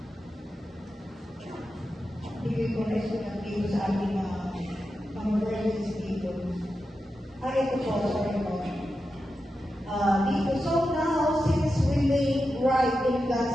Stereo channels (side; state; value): both; normal; correlation 0.90